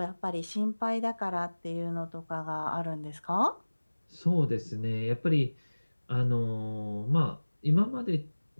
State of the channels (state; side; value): inverted; both; correlation -1.00